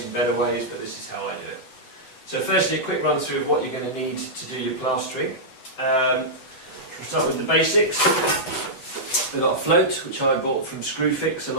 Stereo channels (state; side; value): late; right; 8.0 ms